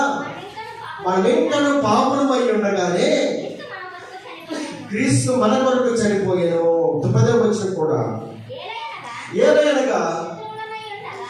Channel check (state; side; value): identical; both; correlation 1.00